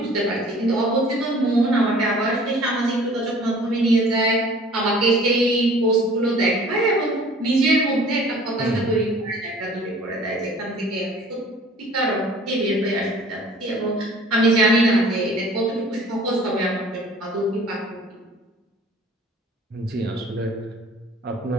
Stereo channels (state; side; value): normal; both; correlation 0.49